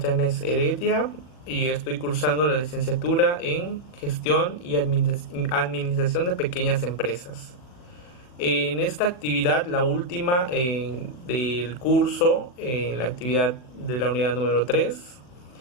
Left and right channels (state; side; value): late; right; 40 ms